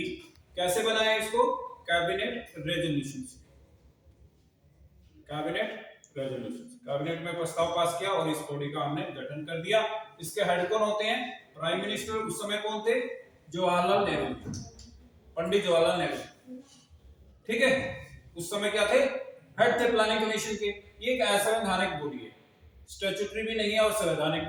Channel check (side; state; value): both; identical; correlation 1.00